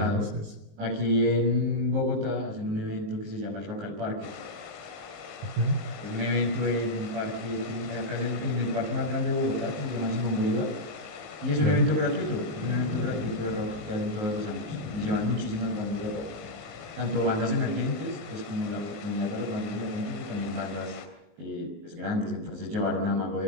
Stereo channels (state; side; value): late; left; 19 ms